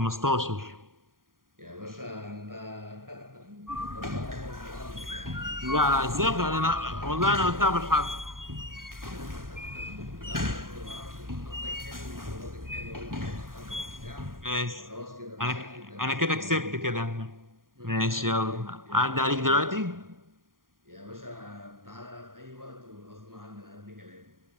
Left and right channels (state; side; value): late; left; 0.91 ms